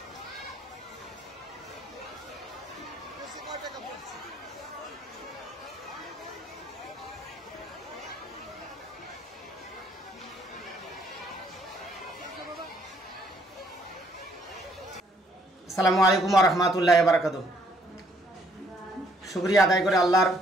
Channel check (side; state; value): both; normal; correlation 0.66